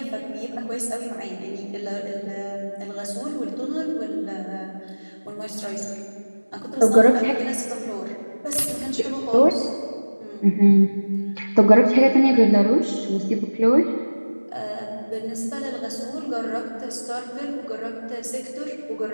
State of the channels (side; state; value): both; inverted; correlation -1.00